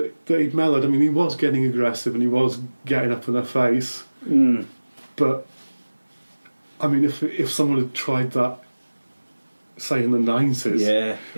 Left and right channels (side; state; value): both; inverted; correlation -1.00